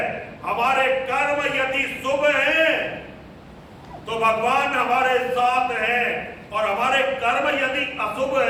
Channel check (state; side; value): identical; both; correlation 1.00